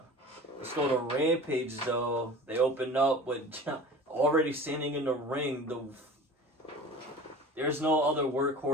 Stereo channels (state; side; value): normal; both; correlation 0.39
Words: Let's go to Rampage, though. They opened up with already standing in the ring. There's no other